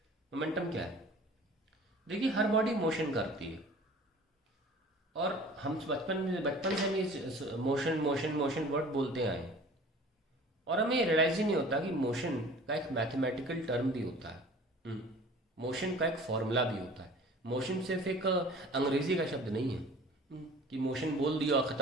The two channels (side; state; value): both; normal; correlation 0.45